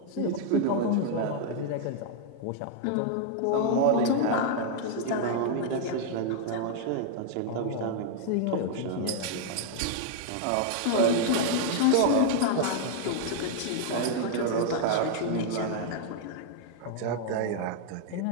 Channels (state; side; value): different; both; correlation -0.01